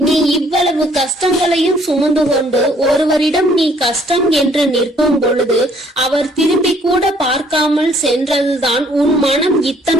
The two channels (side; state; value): both; normal; correlation 0.62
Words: நீ இவ்வளவு கஷ்டங்களையும் சுமந்து கொண்டு ஒருவரிடம் நீ கஷ்டம் என்று நிற்கும் பொழுது அவர் திரும்பி கூட பார்க்காமல் சென்றதுதான் உன் மனம்